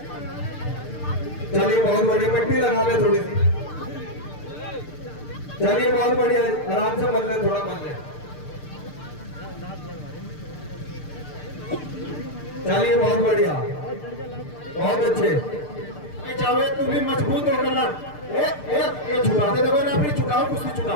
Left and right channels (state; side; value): late; right; 6.7 ms